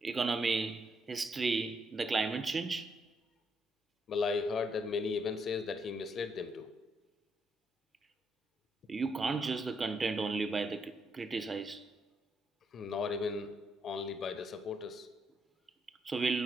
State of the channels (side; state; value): both; normal; correlation 0.77